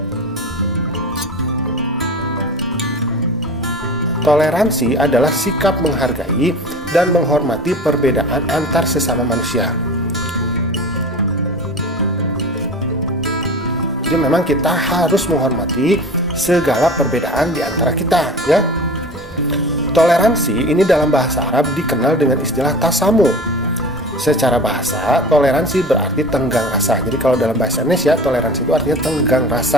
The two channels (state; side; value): normal; both; correlation 0.35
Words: Toleransi adalah sikap menghargai dan menghormati perbedaan antar sesama manusia. Jadi memang kita harus menghormati segala perbedaan di antara kita, ya. Toleransi ini dalam bahasa Arab dikenal dengan istilah tasamu. Secara bahasa, toleransi berarti tenggang rasa. Jadi kalau dalam bahasa Indonesia, toleransi itu artinya tenggang